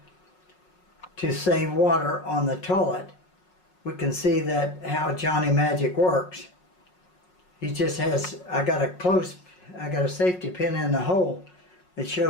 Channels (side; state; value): right; late; 5.5 ms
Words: to save water on the toilet. We can see that how Johnny Majic works. He just has, I got a safety pin in the hole. It